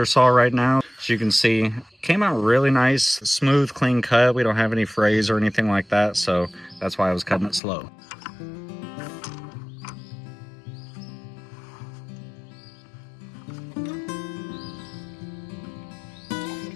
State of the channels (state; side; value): drops out; right; at 7.6 s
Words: saw right now. As you can see, came out really nice, smooth, clean cut. We don't have any frays or anything like that, so that's why I was cutting it slow.